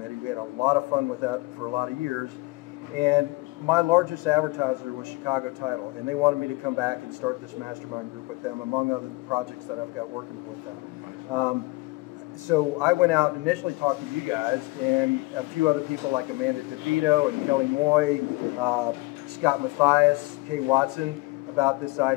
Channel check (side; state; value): right; quieter; 23.4 dB